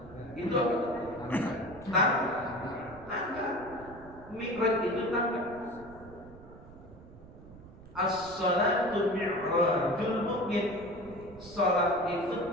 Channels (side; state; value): right; noise; rumble, 19 dB below the sound